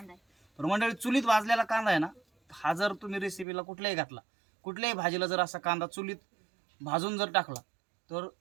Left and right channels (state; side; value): drops out; left; at 3.5 s